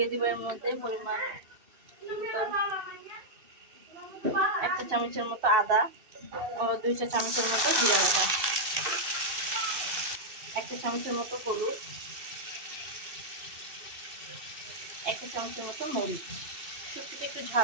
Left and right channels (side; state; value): left; late; 2.6 ms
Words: দিব এর মধ্যে পরিমাণ 1 চা চামচের মতো আদা ও 2 চা চামচের মতো জিরা বাটা, 1 চা চামচের মতো হলুদ, 1 চা চামচের মতো মরিচ। শুটকিটা একটু